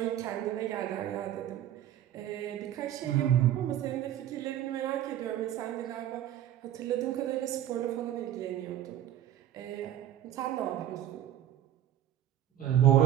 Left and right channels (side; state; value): left; quieter; 11.8 dB